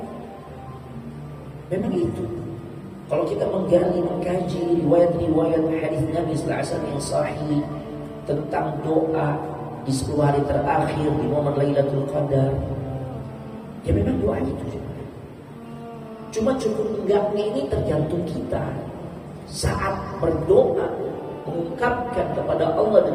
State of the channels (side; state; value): both; identical; correlation 1.00